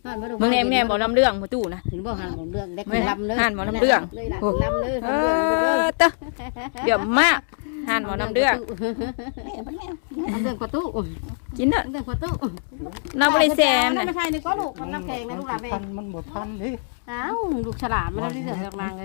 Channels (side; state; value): right; silent; digital silence